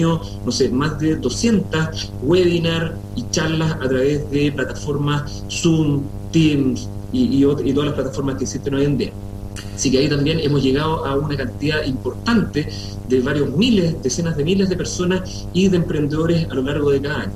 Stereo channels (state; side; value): identical; both; correlation 1.00